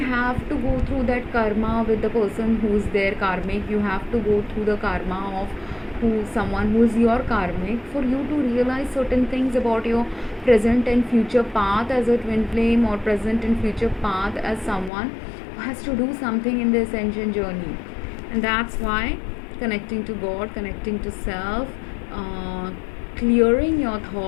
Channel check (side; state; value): right; drops out; at 14.9 s